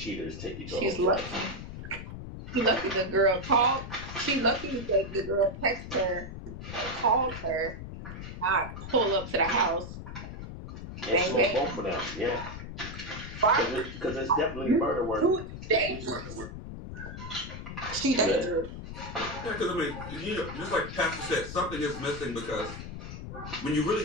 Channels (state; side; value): noise; left; rumble, 9 dB below the sound